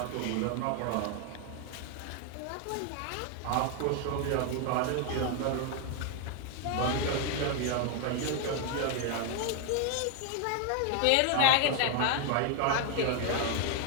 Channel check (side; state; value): both; different; correlation 0.01